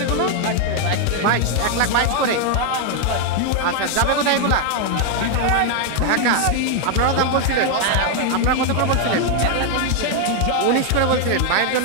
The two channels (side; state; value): both; different; correlation 0.00